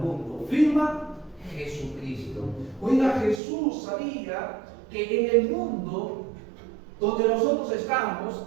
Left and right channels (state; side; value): drops out; left; at 3.4 s